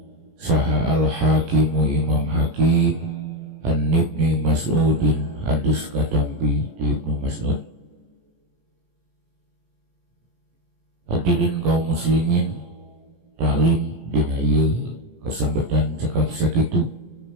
saha al-hakimu Imam Hakim an Ibnu Mas'udin, hadis katampi di Ibnu Mas'ud. Hadirin kaum muslimin, taklim dina ieu kasambetan cekap sakitu,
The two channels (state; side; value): late; left; 17 ms